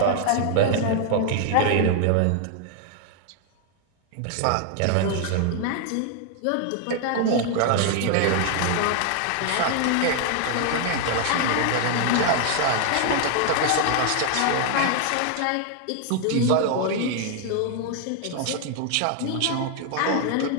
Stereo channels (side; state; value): both; different; correlation 0.00